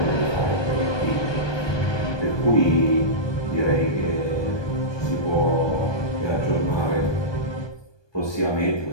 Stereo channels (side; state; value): right; late; 1.2 ms